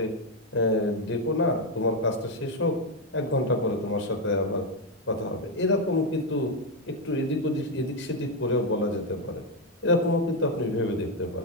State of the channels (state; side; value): normal; both; correlation 0.05